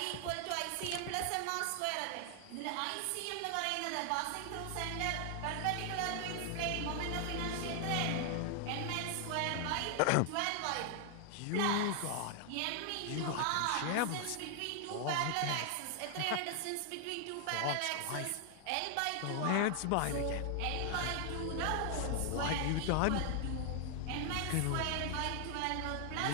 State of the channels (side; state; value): both; different; correlation 0.00